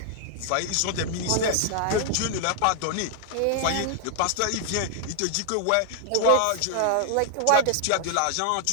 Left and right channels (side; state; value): both; different; correlation 0.00